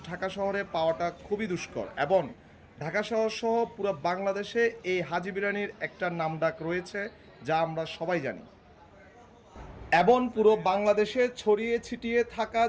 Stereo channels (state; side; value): identical; both; correlation 1.00